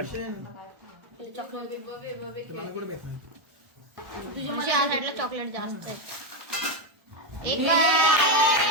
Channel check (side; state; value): left; late; 1.2 ms